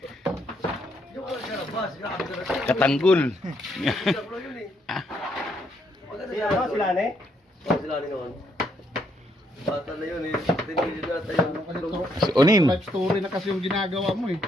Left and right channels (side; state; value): both; normal; correlation 0.73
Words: Katanggol. Sila ne? Sila ne noon. Bata na yun eh. Tinigil na tayo. Si Onin. Life story na kasi yung ginagawa mo eh.